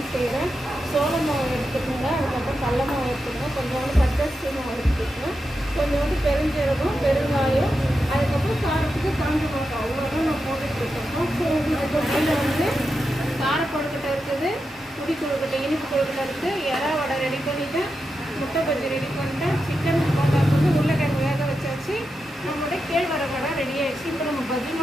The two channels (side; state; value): both; normal; correlation 0.88